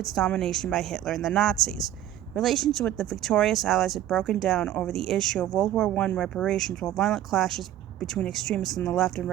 domination by Hitler and the Nazis. Relations with the victorious Allies had broken down over the issue of World War I reparations, while violent clashes between extremists on the left and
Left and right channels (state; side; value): quieter; left; 12.3 dB